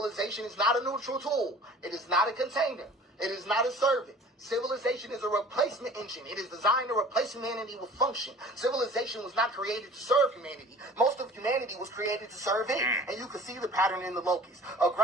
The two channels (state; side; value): normal; both; correlation 0.45